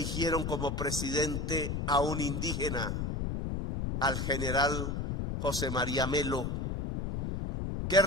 como presidente a un indígena, al general José María Melo, que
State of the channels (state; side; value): noise; left; rumble, 2 dB below the sound